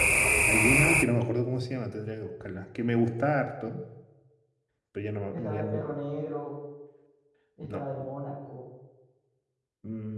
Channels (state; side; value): identical; both; correlation 1.00